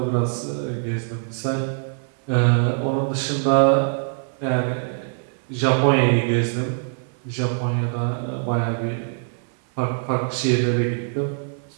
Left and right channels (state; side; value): silent; left; 59 dB below the other